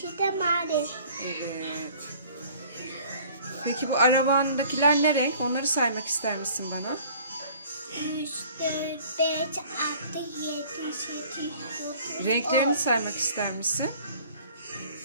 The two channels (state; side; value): inverted; both; correlation -0.51